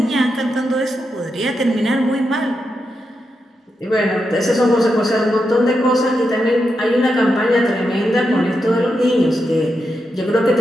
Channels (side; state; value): both; normal; correlation 0.86